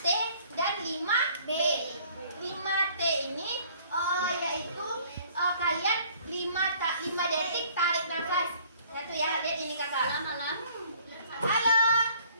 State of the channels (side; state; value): both; inverted; correlation -0.57